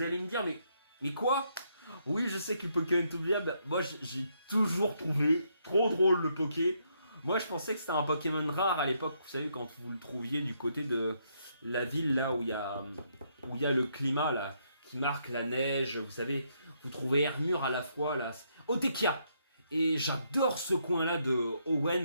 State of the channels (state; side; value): inverted; both; correlation -0.74